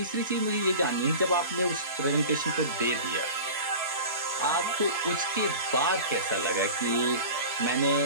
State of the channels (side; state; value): both; inverted; correlation -0.35